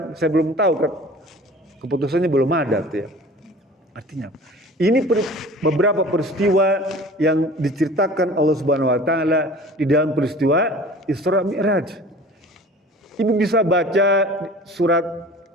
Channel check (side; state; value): both; normal; correlation 0.43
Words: saya belum tahu keputusannya belum ada tuh ya. Artinya ini beberapa peristiwa yang diceritakan Allah Subhanahu Wa Taala di dalam peristiwa Isra Mi'raj. Ibu bisa baca surat